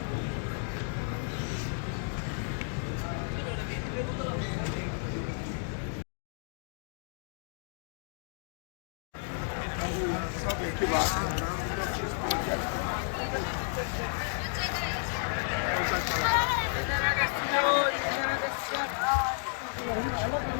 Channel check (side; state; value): right; silent; digital silence